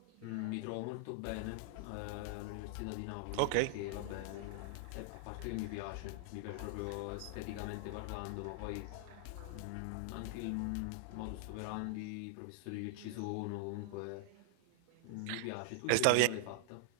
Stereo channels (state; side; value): different; both; correlation 0.00